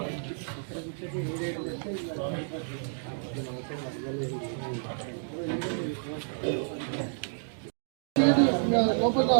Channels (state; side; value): silent; left; digital silence